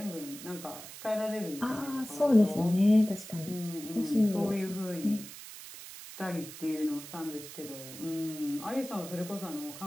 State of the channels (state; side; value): noise; right; hiss, 13 dB below the sound